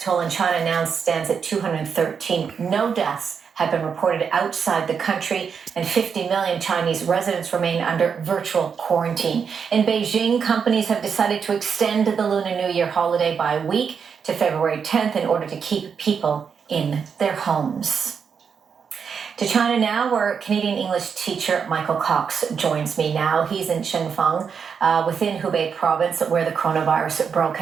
toll in China now stands at 213. No deaths have been reported outside the country, and 50 million Chinese residents remain under virtual quarantine. In Beijing, companies have decided to extend the Lunar New Year holiday by a week to February 10th in order to keep people in their homes. To China now, where Canadian English teacher Michael Cox joins me now. He's in Shenzhen, within Hubei province, where the coronavirus broke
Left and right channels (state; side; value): quieter; left; 6.5 dB